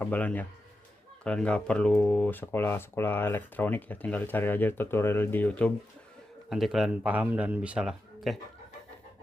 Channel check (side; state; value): both; normal; correlation 0.89